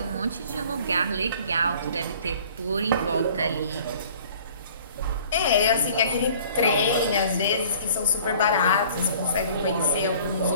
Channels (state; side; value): inverted; both; correlation -0.51